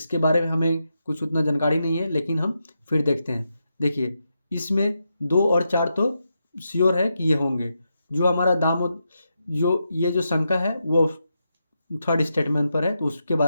बारे में हमें कुछ उतना जानकारी नहीं है लेकिन हम फिर देखते हैं। देखिए, इसमें 2 और 4 तो श्योर है कि ये होंगे। जो हमारा जो ये जो शंका है वो थर्ड स्टेटमेंट पर है, तो उसके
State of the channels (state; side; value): inverted; both; correlation -0.85